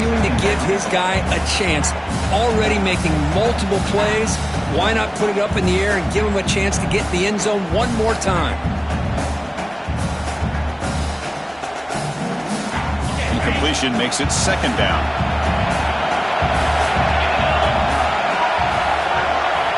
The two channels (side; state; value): both; identical; correlation 1.00